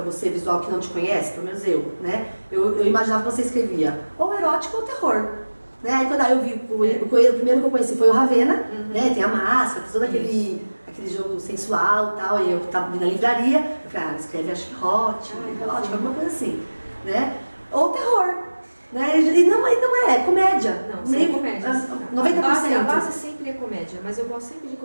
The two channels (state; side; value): inverted; both; correlation -1.00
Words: você, visual que não te conhece, pelo menos eu, né? Eu imaginava que você escrevia ou erótico ou terror. Né? Aí quando eu vi, o primeiro que eu conheci foi o Ravena, né? Tem a máscara, todo aquele jogo sensual e tal, e eu tava na livraria, eu falei, ela escreve acho que erótico, alguma coisa assim, né? Ou terror, né? E não é comédia. Não, sem comédia. 90%. A base sempre é comédia, mas eu gosto sempre de